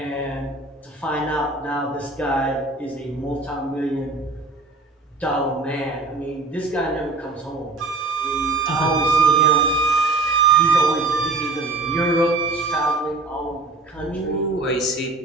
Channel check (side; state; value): left; quieter; 3.4 dB